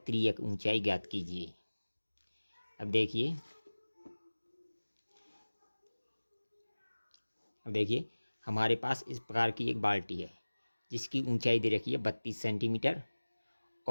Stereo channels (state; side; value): inverted; both; correlation -1.00